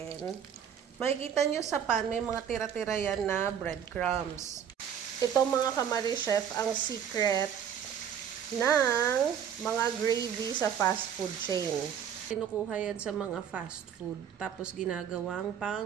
makikita nyo sa pan, may mga tira-tira yan na breadcrumbs. Ito mga kamari-chef, ang secret ng mga gravy sa fast food chain. Kinukuha yan sa mga fast food, tapos ginagawang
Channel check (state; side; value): quieter; left; 8.6 dB